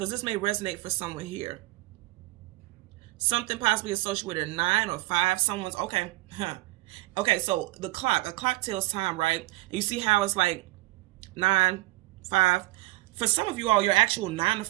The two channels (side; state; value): left; quieter; 19.8 dB